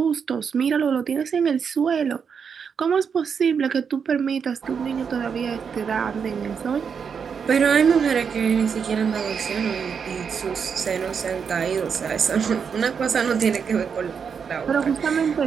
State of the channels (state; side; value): quieter; left; 6.5 dB